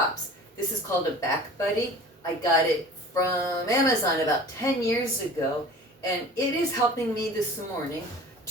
This is called a Back Buddy. I got it from Amazon about 10 years ago, and it is helping me this morning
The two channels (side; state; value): both; normal; correlation 0.42